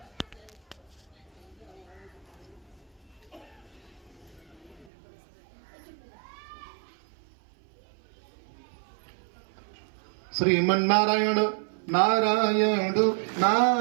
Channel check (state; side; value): drops out; left; at 4.9 s